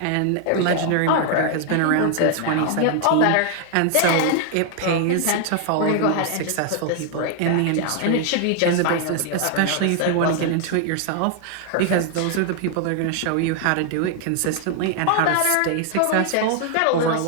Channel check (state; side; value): different; both; correlation 0.00